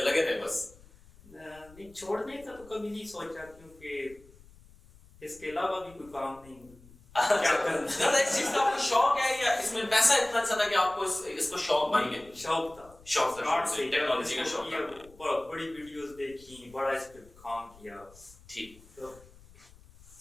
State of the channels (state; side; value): noise; left; rumble, 24 dB below the sound